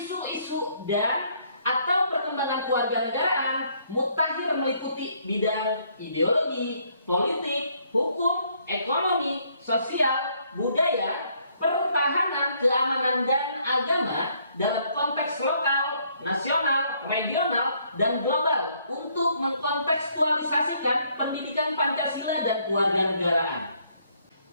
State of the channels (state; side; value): inverted; both; correlation -0.67